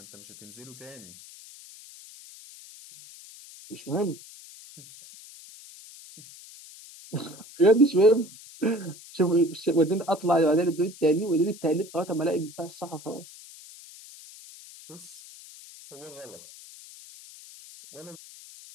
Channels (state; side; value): noise; left; hiss, 19 dB below the sound